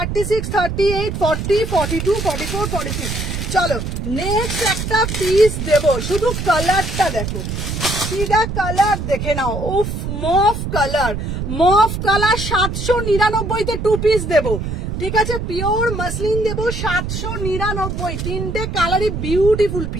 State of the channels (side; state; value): right; noise; rumble, 4 dB below the sound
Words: 38, 40, 42, 44, 46। চলো নেক্সট একটা পিস দেবো, শুধু কালারটা দেখো, সিধা কালার দেখে নাও, উফ mauve colour, mauve colour 799 two piece দেবো। ঠিক আছে পিওর মাসলিন দেবো 799, তিনটে কালারই beautiful